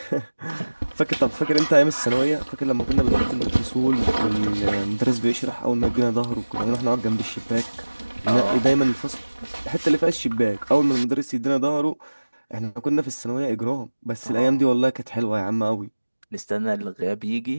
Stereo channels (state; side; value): inverted; both; correlation -1.00